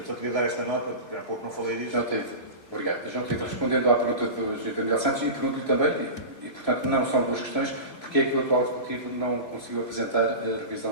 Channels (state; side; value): late; right; 3.0 ms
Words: só queria dar esta nota, porque há pouco não falei disso. Obrigado. João Tito, respondendo à pergunta do Sr. Miguel Santos, e pergunto-lhe também, e portanto não são 2 questões, porque é que o atual Executivo não conseguiu apresentar a